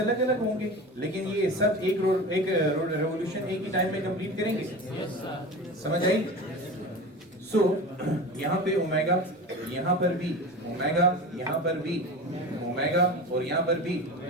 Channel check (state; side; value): normal; both; correlation 0.31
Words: अलग होंगे, लेकिन ये सब एक रेवोल्यूशन एक ही टाइम में कंप्लीट करेंगे। समझ आई? सो यहाँ पे ओमेगा, यहाँ पर भी ओमेगा, यहाँ पर भी ओमेगा, और यहाँ पर भी